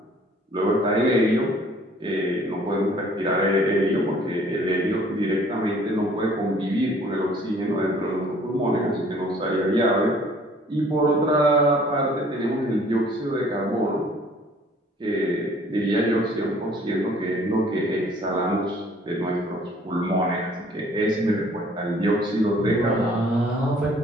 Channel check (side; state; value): both; normal; correlation 0.56